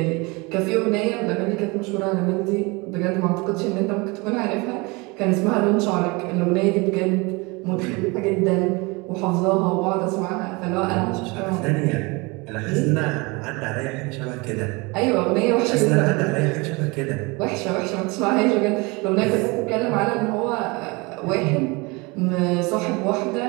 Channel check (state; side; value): quieter; left; 26.4 dB